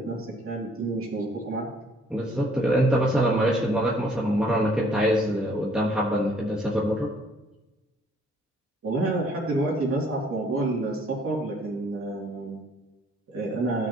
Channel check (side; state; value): both; normal; correlation 0.61